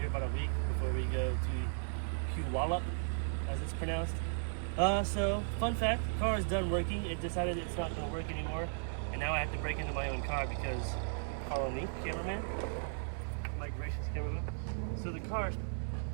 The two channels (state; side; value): silent; left; 54 dB below the other